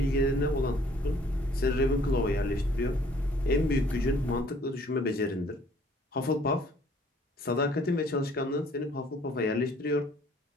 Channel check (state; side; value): normal; both; correlation 0.58